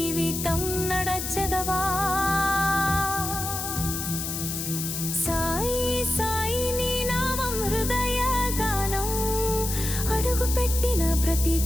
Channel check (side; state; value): left; noise; hiss, 4 dB below the sound